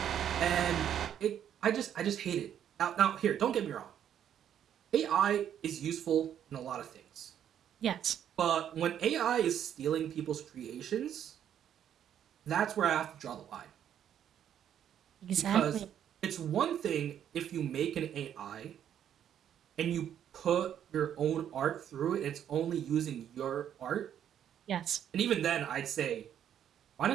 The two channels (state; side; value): quieter; left; 9.8 dB